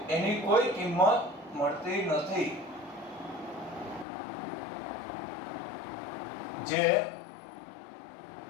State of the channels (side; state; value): right; drops out; at 4.0 s